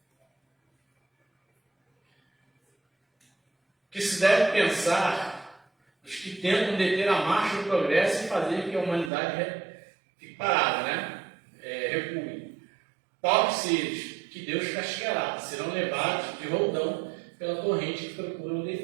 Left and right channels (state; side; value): drops out; left; at 9.1 s